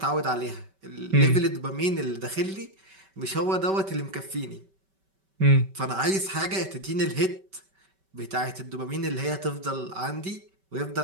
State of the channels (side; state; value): left; late; 5.2 ms